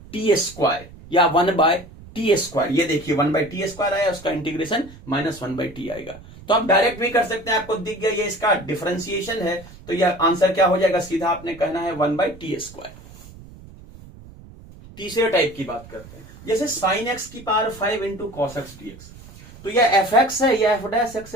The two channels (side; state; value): right; noise; rumble, 19 dB below the sound